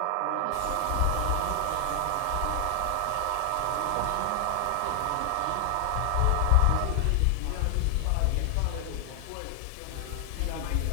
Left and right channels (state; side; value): different; both; correlation 0.00